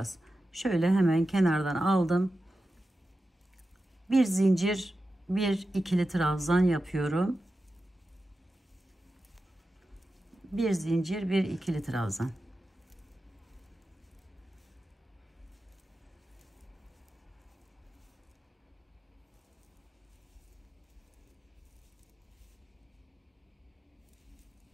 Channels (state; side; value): normal; both; correlation 0.92